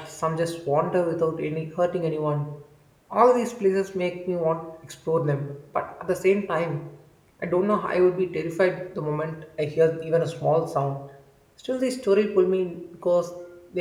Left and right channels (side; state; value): both; identical; correlation 1.00